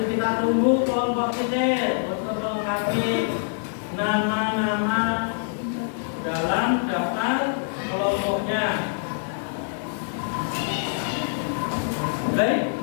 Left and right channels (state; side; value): silent; right; digital silence